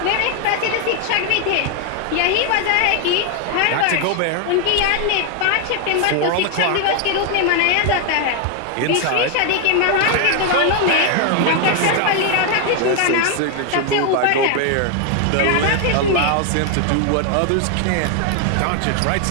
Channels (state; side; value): different; both; correlation 0.01